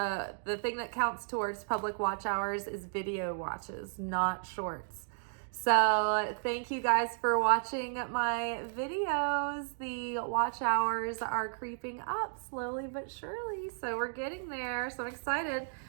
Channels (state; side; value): silent; left; digital silence